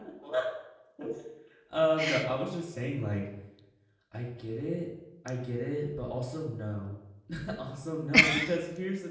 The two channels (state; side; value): identical; both; correlation 1.00